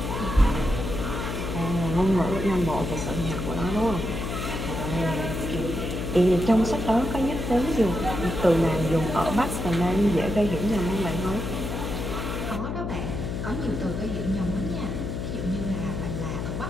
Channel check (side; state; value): left; noise; hum, 4 dB below the sound